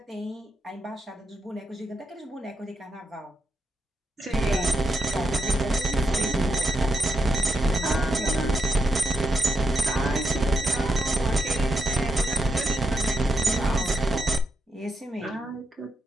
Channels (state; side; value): normal; both; correlation 0.84